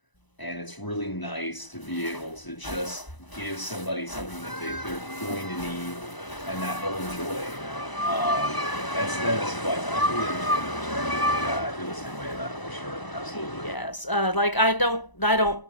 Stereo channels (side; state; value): right; late; 1.0 ms